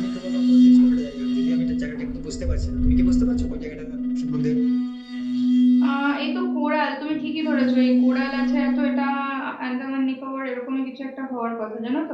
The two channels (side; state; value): both; identical; correlation 1.00